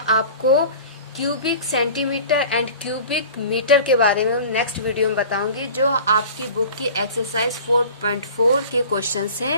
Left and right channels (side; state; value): both; inverted; correlation -0.41